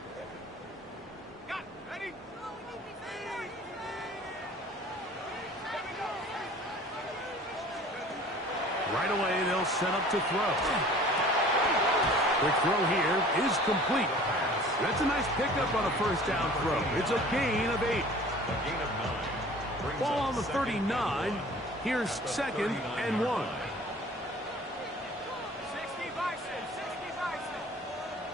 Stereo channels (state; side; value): normal; both; correlation 0.47